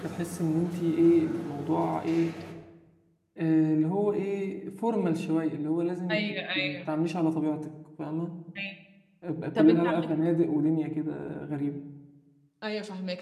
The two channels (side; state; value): both; identical; correlation 1.00